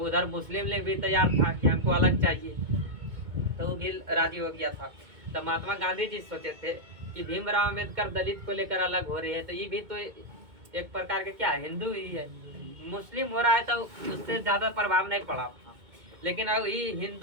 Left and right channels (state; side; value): late; left; 2.2 ms